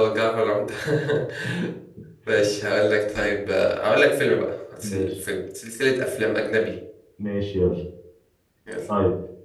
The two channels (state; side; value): identical; both; correlation 1.00